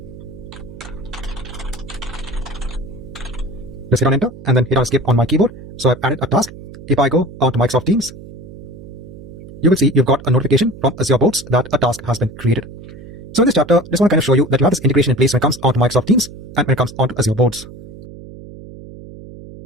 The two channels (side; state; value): right; noise; hum, 15 dB below the sound